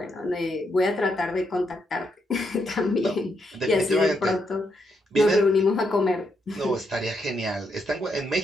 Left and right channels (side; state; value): both; normal; correlation 0.79